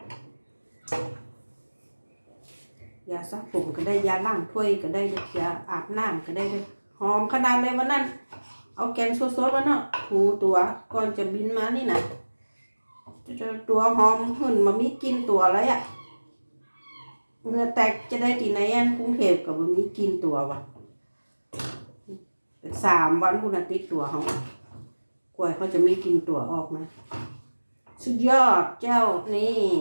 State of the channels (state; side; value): inverted; both; correlation -1.00